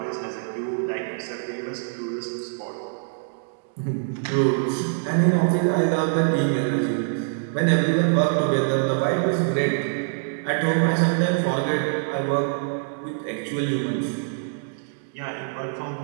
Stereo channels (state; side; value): silent; left; digital silence